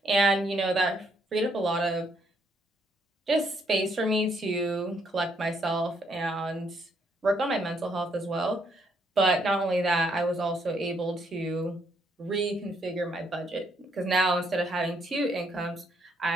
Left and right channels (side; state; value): both; normal; correlation 0.72